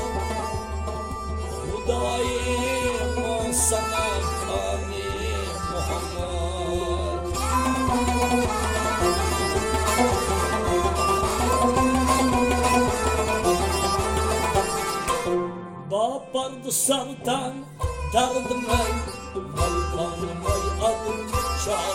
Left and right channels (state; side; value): identical; both; correlation 1.00